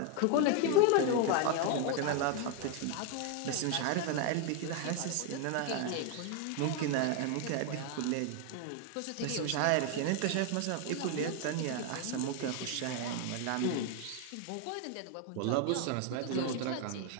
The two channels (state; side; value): different; both; correlation 0.01